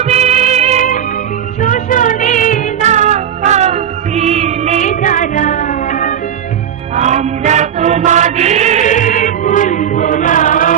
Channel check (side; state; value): left; quieter; 9.1 dB